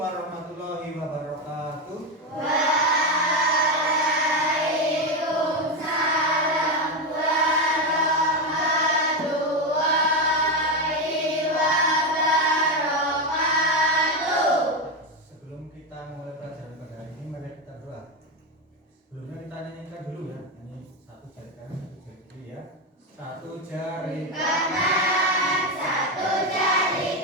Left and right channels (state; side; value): normal; both; correlation 0.12